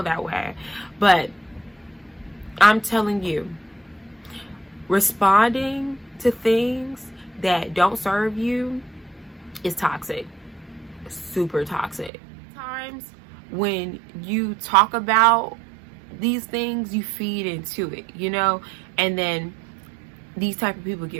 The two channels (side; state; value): left; drops out; at 12.1 s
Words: that way, but I'm telling you, responding to things that don't serve you is toxic. Super toxic. Times when you talk about these things, you feed into it, you know, and then these type of people